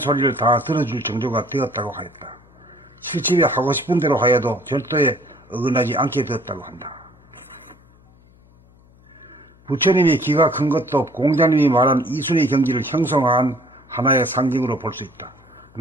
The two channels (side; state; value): left; noise; hum, 28 dB below the sound